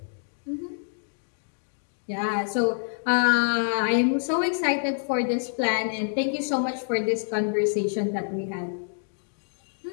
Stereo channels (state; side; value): silent; right; digital silence